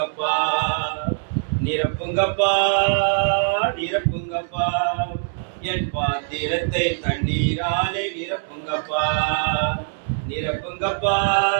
நிரப்புங்கப்பா நிரப்புங்கப்பா, என் பாத்திரத்தை தண்ணீராலே நிரப்புங்கப்பா. நிரப்புங்கப்பா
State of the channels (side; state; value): left; silent; 63 dB below the other